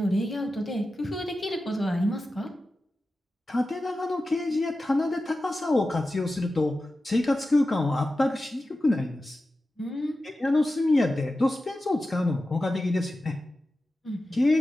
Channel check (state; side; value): normal; both; correlation 0.93